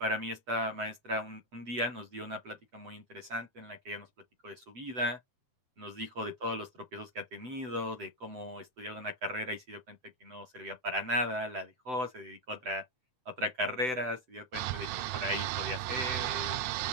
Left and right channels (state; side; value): late; left; 7.9 ms